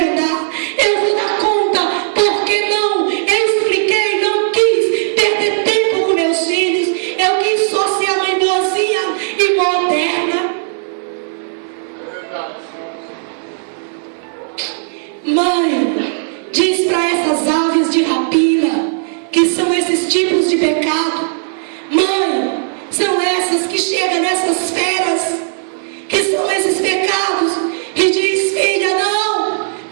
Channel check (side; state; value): left; silent; digital silence